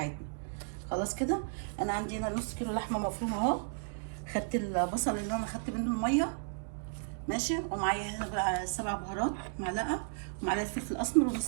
خلاص كده. انا عندي هنا نص كيلو لحمه مفرومه اهو. خدت البصل اللي انا خدت منه الميه ماشي، ومعايا هنا بقى 7 بهارات، معلقه، ومعلقه فلفل اسمر،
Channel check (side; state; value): left; silent; digital silence